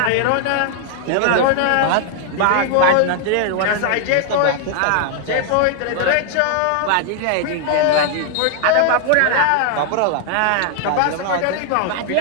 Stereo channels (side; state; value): both; different; correlation 0.00